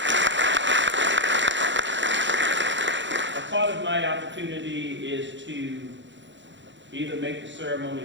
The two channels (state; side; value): late; left; 0.54 ms